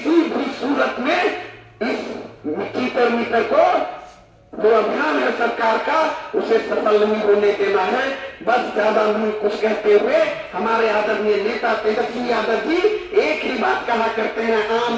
भी सूरत में इस चीटर मीटर को जो अभियान है सरकार का उसे सफल नहीं होने देना है। बस ज्यादा नहीं कुछ कहते हुए हमारे आदरणीय नेता तेजस्वी यादव जी एक ही बात कहा करते हैं, आम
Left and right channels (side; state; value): both; identical; correlation 1.00